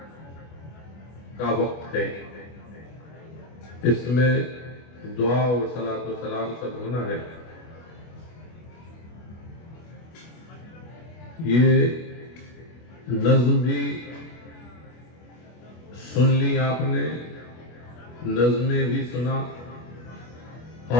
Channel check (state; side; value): late; right; 25 ms